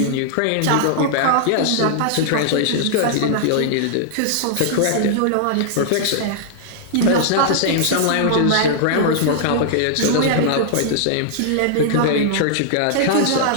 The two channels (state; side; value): different; both; correlation -0.01